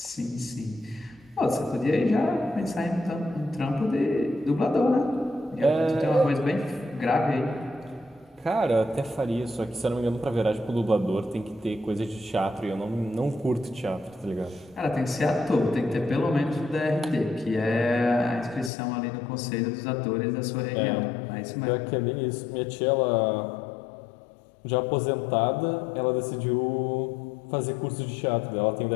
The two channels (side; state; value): right; drops out; at 18.7 s